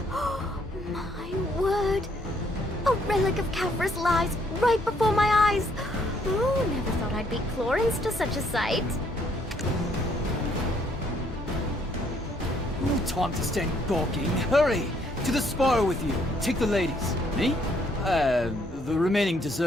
My word! A relic of Kafra's lies right before my eyes! Oh, never thought I'd beat Clorens to such a sight. No time to stand gawking. Hurry! To the spire with you. Take the ladies. Me? The remaining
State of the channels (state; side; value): normal; both; correlation 0.68